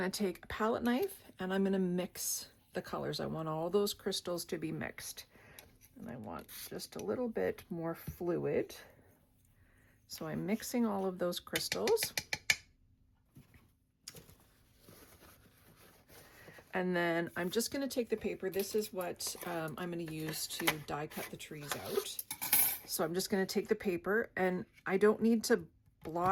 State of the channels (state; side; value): identical; both; correlation 1.00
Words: to take a palette knife, and I'm going to mix the colors. I want all those crystals to be mixed, and I want just a little bit more fluid. So I'm mixing all of those crystals. And then I'm just going to take the paper. This is what I'm going to use to die cut the trees out. So I'm just going to take the paper, and I don't need to